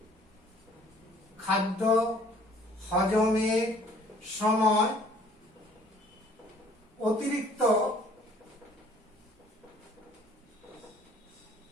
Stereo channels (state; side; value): normal; both; correlation 0.56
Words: খাদ্য হজমের সময় অতিরিক্ত